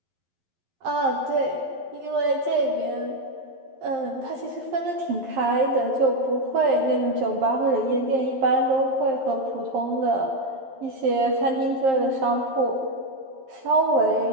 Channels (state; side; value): late; left; 11 ms